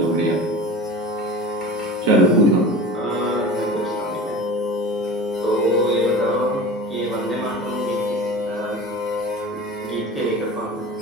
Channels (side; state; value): both; normal; correlation 0.36